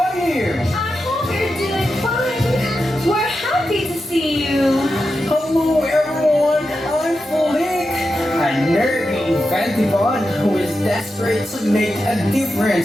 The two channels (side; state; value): both; normal; correlation 0.89